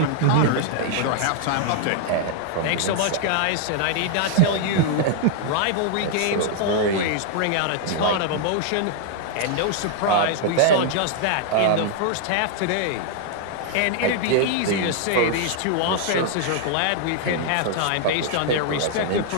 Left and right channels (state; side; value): different; both; correlation -0.01